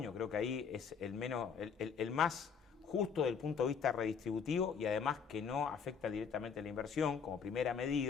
creo que ahí es el más justo desde el punto de vista redistributivo y además que no afecta directamente a la inversión como primera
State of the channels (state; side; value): quieter; right; 6.4 dB